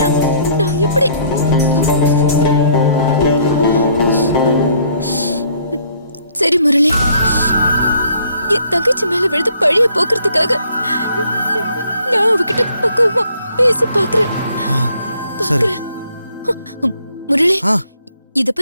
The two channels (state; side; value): inverted; both; correlation -0.63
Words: நான் எப்படி? சரி முரளி, என் தங்கச்சி மேல விழுந்து பழிய போக்குறதுக்காக நான் அவகிட்ட பக்குவமா பேசி பாக்குறேன். சரி முரளி, ஆ. இத